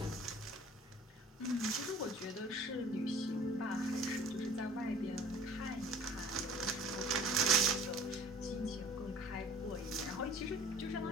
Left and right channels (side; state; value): both; normal; correlation 0.47